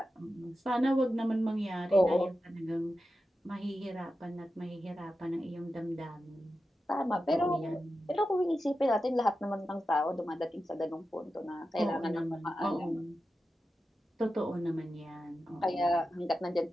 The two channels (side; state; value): both; normal; correlation 0.91